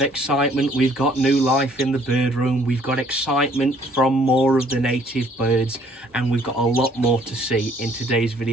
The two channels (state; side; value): normal; both; correlation 0.61